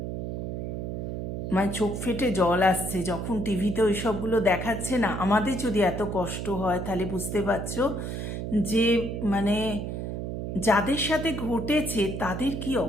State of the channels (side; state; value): right; noise; hum, 4 dB below the sound